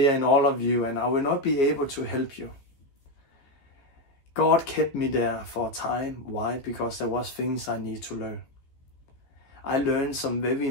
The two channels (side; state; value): right; late; 14 ms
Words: in all of you, and I will not be able to help you. God kept me there for a time. Why? Because there was things I need to learn. I learned some very